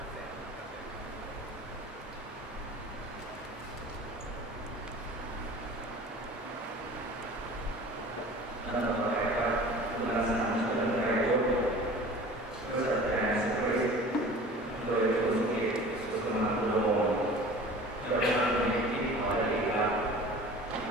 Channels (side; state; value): both; normal; correlation 0.42